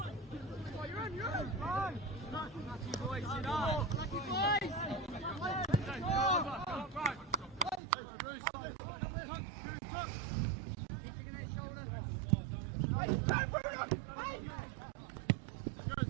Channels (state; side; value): drops out; left; at 7.8 s